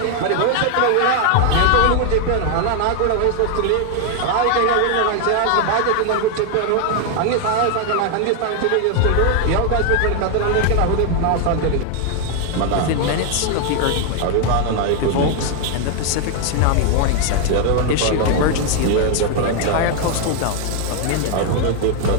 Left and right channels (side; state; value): both; different; correlation 0.00